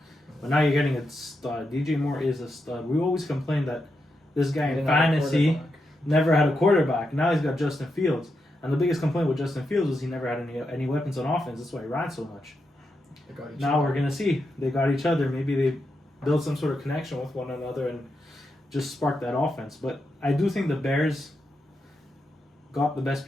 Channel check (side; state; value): both; normal; correlation 0.85